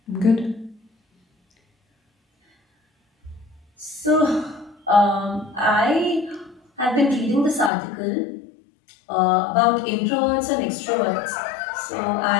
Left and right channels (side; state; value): right; drops out; at 7.7 s